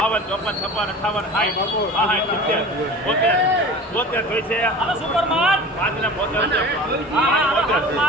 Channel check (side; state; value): both; normal; correlation 0.37